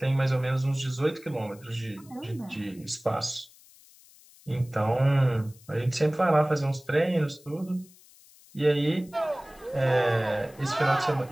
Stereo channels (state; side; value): noise; left; hiss, 25 dB below the sound